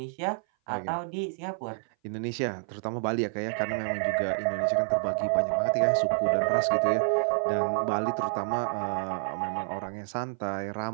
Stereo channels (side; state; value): left; silent; 57 dB below the other